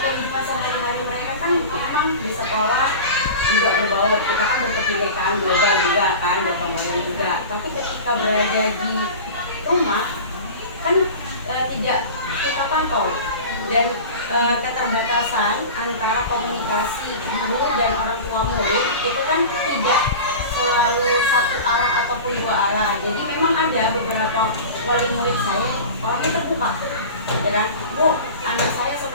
sehari-hari mereka kan memang di sekolah juga berbaur, kita kan berkebinekaan global juga kan, berkemudian juga. Tapi ketika berada di rumah kan tidak kita pantau dan keterbatasan antara komunikasi guru dan orang tua murid itu kan tidak selalu satu arah ataupun dua arah. Jadi memang ada beberapa wali murid saya orangnya terbuka, ya kan, Bu, anak saya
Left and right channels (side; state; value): both; inverted; correlation -0.33